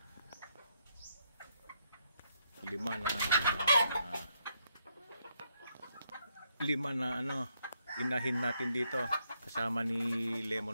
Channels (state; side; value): inverted; both; correlation -0.77